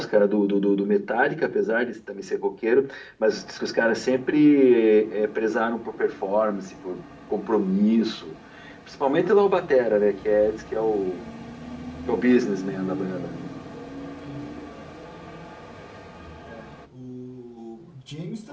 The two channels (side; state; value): both; identical; correlation 1.00